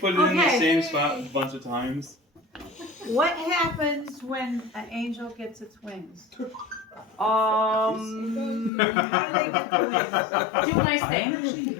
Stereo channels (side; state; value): right; drops out; at 8.7 s